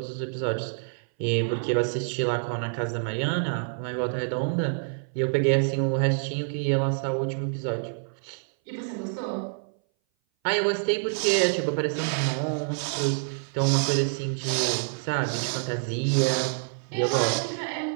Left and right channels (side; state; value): left; silent; 58 dB below the other